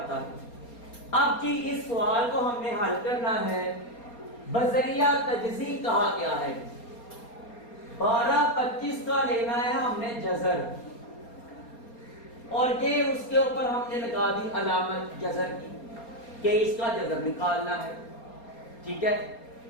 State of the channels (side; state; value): right; late; 4.3 ms